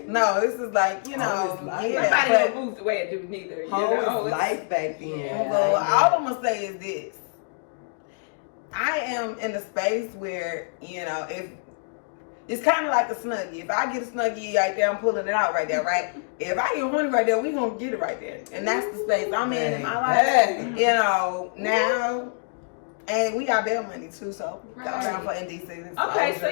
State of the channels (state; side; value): silent; right; digital silence